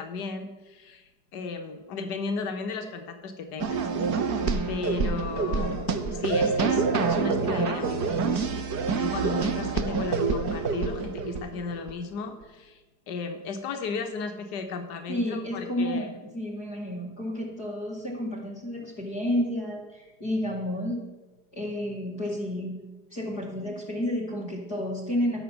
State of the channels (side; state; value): right; late; 4.8 ms